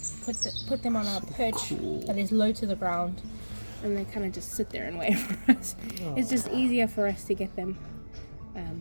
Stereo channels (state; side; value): inverted; both; correlation -1.00